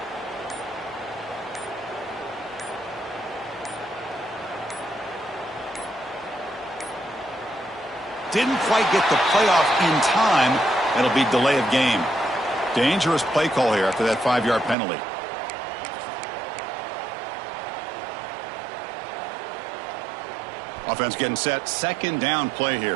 Didn't quite get the playoff in time. That'll be delay of game. Dangerous play call here after that 5-yard penalty. Offense getting set. Second down play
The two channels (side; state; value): left; drops out; at 14.8 s